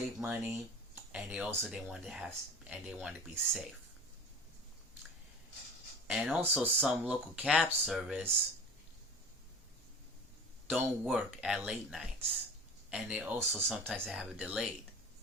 money, and they want to be safe. And also some local cab service don't work at late nights. And they also sometimes have it delayed.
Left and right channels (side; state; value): both; normal; correlation 0.38